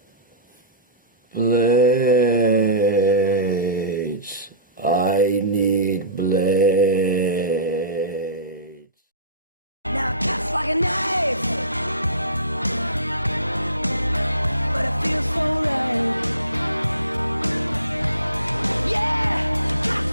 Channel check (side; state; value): both; inverted; correlation -0.36